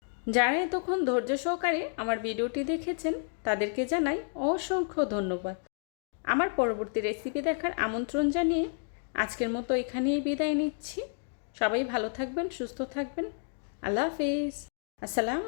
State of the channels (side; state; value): right; silent; 57 dB below the other